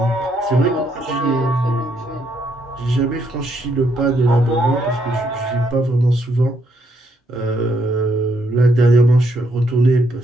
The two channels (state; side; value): normal; both; correlation 0.74